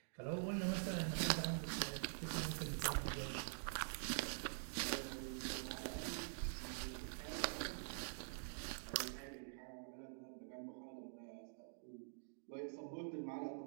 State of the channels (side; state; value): left; silent; digital silence